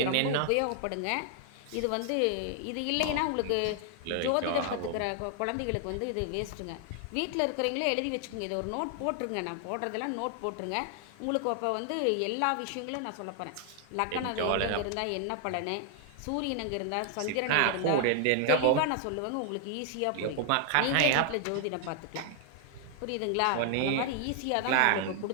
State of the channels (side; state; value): both; different; correlation 0.00